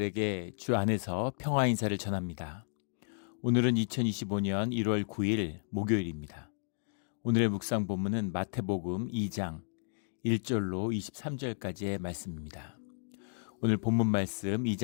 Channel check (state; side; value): silent; right; digital silence